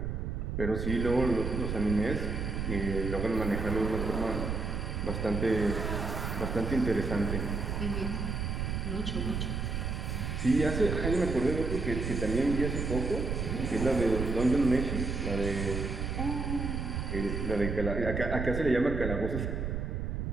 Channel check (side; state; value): right; noise; rumble, 2 dB below the sound